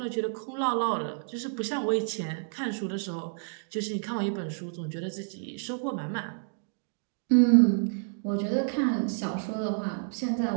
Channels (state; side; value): silent; left; digital silence